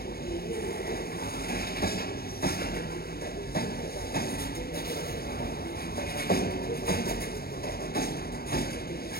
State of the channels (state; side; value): late; right; 0.45 ms